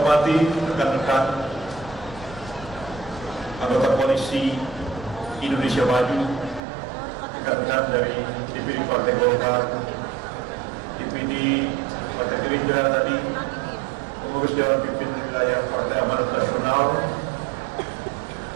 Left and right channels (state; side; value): drops out; left; at 6.6 s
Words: rekan-rekan anggota Koalisi Indonesia Maju, rekan-rekan dari DPD Partai Golkar, DPD Partai Gerindra tadi, pengurus Dewan Pimpinan Wilayah Partai Amanat Nasional,